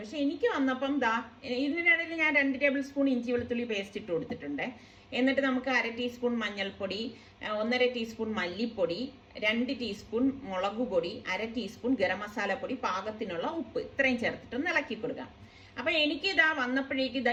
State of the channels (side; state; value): both; identical; correlation 1.00